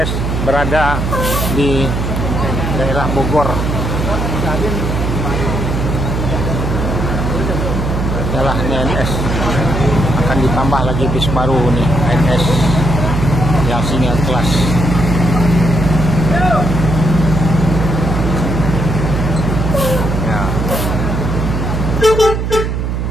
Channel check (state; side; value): noise; right; hum, 1 dB below the sound